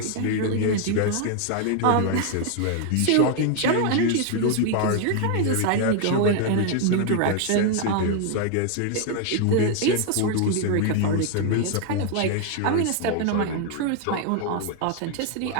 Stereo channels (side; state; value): both; different; correlation 0.00